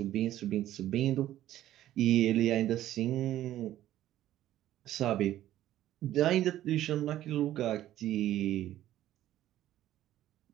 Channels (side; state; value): left; quieter; 13.3 dB